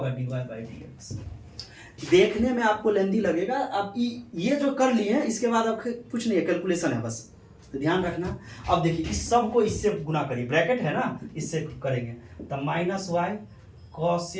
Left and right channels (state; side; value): identical; both; correlation 1.00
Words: dy बाई डी एक्स। देखने में आपको लेंदी लगेगा, आप ये जो कर लिए हैं इसके बाद अब कुछ नहीं है, कैलकुलेशन है बस, तो ध्यान रखना। अब देखिए इस सब को इससे गुना करिए, ब्रैकेट है ना, इससे करेंगे तो minus y